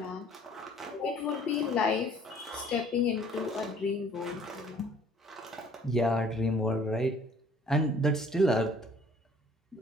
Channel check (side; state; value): both; normal; correlation 0.55